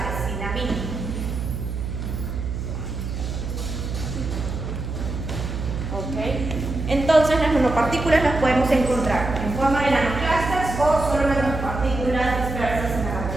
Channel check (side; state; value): right; noise; hum, 5 dB below the sound